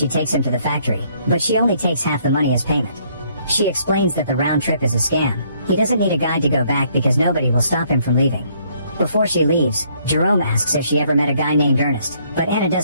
takes him to the factory, but she only takes half the money as payment. She explains that the round trip is a scam. He doesn't need a guide to go back because nobody will stop him from leaving. Before she leaves, Jerome asks if she ever met a guy named Ernest, but Anna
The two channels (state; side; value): inverted; both; correlation -0.67